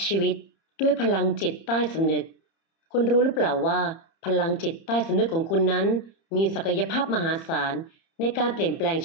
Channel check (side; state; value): right; late; 30 ms